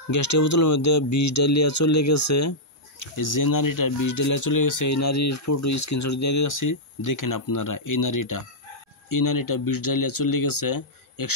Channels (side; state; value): both; normal; correlation -0.09